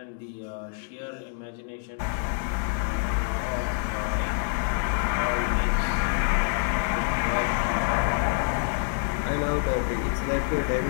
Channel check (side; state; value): right; silent; digital silence